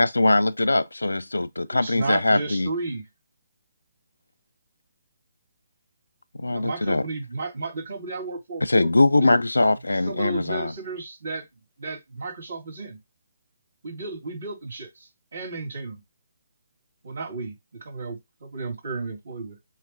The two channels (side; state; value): both; inverted; correlation -0.93